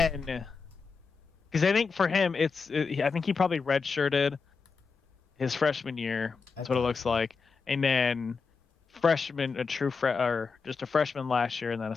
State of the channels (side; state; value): right; quieter; 5.0 dB